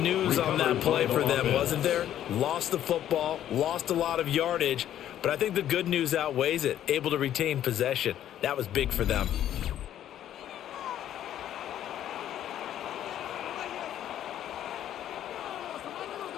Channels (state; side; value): quieter; right; 11.3 dB